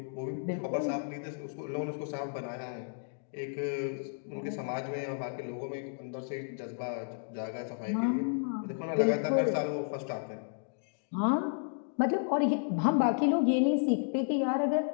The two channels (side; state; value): right; silent; digital silence